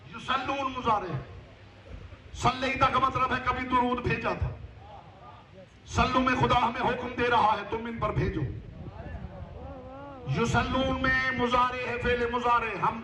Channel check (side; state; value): both; identical; correlation 1.00